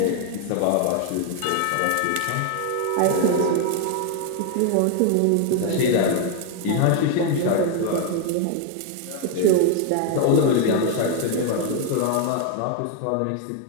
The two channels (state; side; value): different; both; correlation 0.01